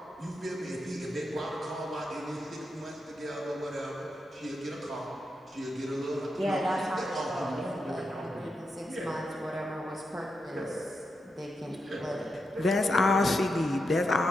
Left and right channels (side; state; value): both; normal; correlation 0.85